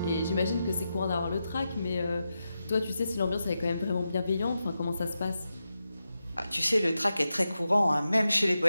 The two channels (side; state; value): both; inverted; correlation -0.89